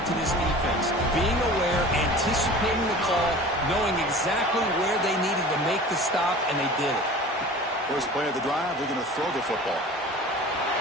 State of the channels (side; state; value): both; normal; correlation 0.40